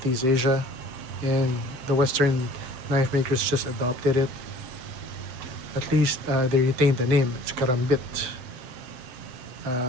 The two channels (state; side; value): late; left; 7.6 ms